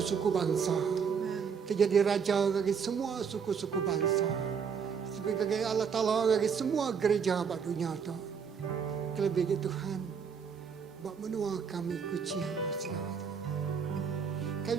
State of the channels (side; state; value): left; quieter; 6.5 dB